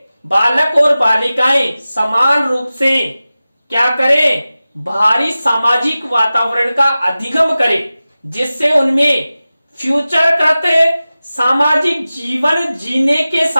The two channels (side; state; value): both; inverted; correlation -0.96